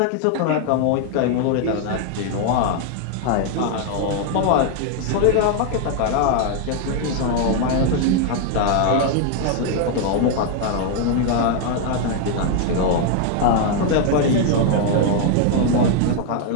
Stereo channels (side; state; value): both; different; correlation 0.00